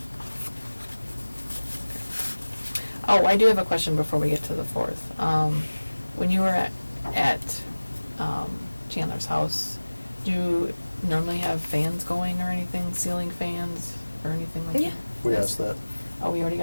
Oh, I do have a question before we get to the 4th. When you were at Chandler's house, do you normally have fans going or anything, ceiling fans or anything like Yeah. that? We asked that. Oh, we already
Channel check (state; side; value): inverted; both; correlation -1.00